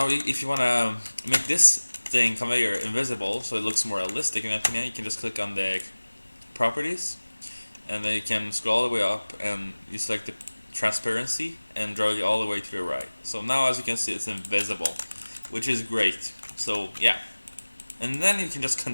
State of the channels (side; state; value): both; inverted; correlation -1.00